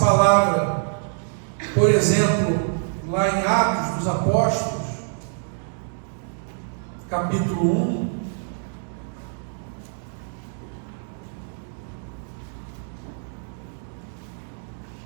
palavra, por exemplo, lá em Atos dos Apóstolos, capítulo 1,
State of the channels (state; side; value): silent; left; digital silence